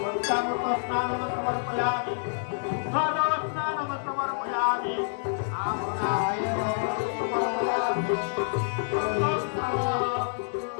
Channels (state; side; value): silent; right; digital silence